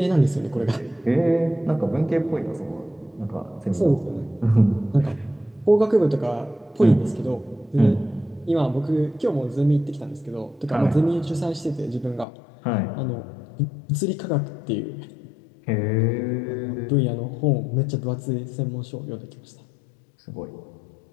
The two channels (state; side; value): drops out; right; at 12.2 s